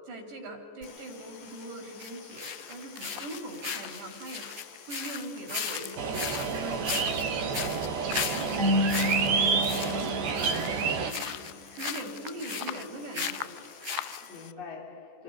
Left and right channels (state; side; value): late; left; 14 ms